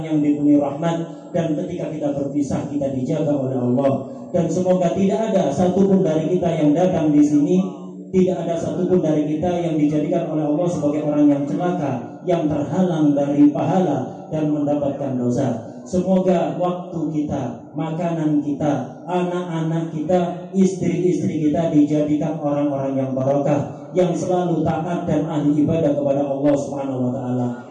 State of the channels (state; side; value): identical; both; correlation 1.00